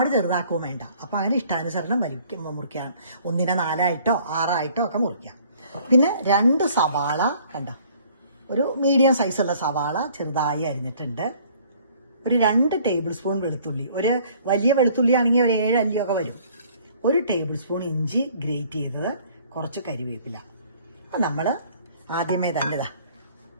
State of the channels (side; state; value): both; inverted; correlation -0.57